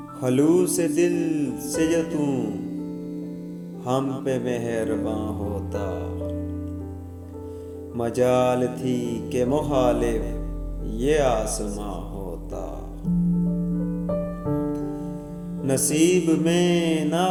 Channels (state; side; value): identical; both; correlation 1.00